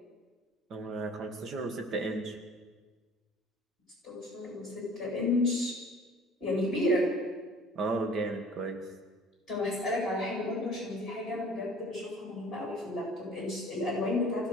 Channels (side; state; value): both; normal; correlation 0.49